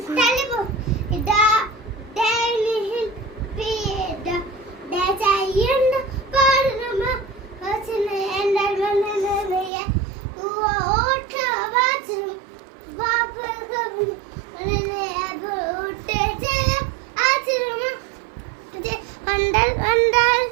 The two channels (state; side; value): drops out; left; at 9.7 s